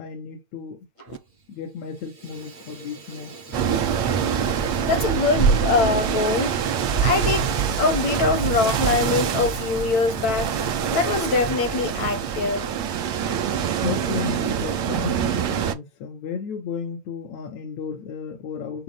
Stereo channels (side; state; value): right; late; 8.8 ms